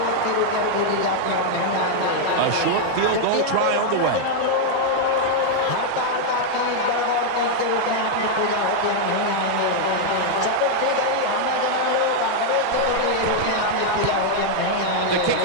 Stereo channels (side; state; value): both; different; correlation 0.00